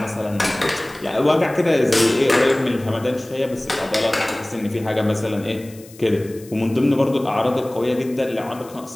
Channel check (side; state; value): left; noise; hiss, 22 dB below the sound